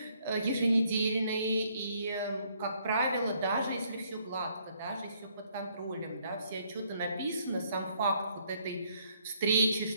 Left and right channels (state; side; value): inverted; both; correlation -0.68